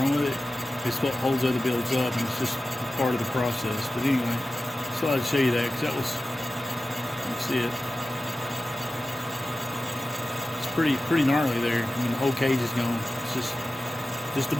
with it, it's what holds other builds up, and it's just part of the process. But anyway, so I'd show you that, because that was, you see it. It's pretty gnarly there. I mean, the whole cage is gone. It's just the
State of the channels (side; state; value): both; normal; correlation 0.95